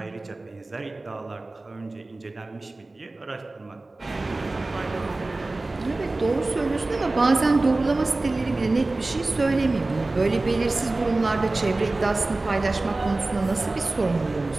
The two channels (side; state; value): left; quieter; 3.1 dB